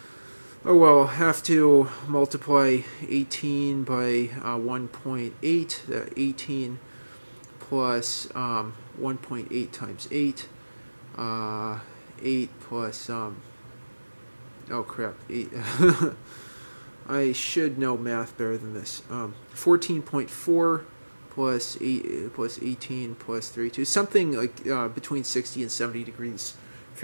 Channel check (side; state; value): both; inverted; correlation -1.00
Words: Oh well, I'll have to multiply 18 by 1.8, 18 plus 1.8 times 8, 8 plus, oh crap, 8, I should know math better than this, 14.4 plus 8 plus 18 plus 32, something like between 60 and 70 degrees